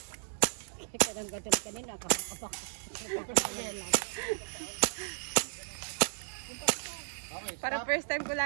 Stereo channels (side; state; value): left; silent; digital silence